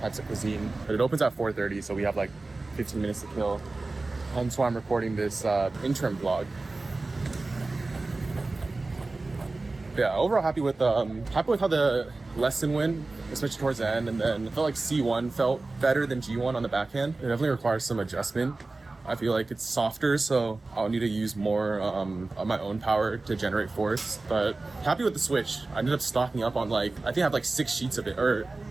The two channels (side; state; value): left; quieter; 3.3 dB